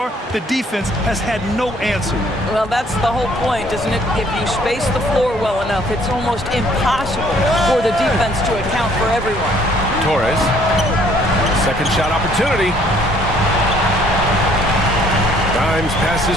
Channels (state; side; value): normal; both; correlation 0.61